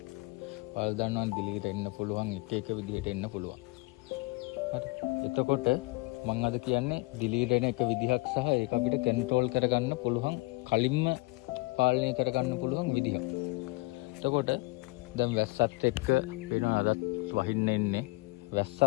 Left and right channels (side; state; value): right; quieter; 24.8 dB